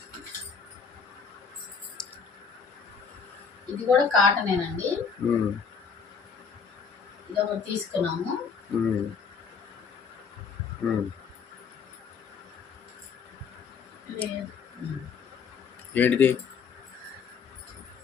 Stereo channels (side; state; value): right; quieter; 6.0 dB